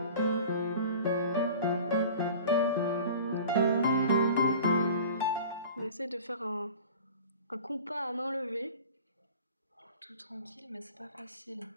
On essaie de faire un compas à main levée. Tout tranquille, mais c'est pas facile.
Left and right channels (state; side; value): inverted; both; correlation -0.41